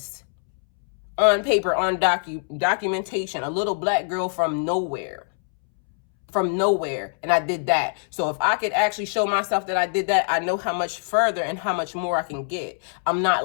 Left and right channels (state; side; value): silent; right; 63 dB below the other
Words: On paper, on documentation, a little black girl from nowhere, and I did that. So if I could actually show myself that I did that, I know how much further and how much more I can get. I'm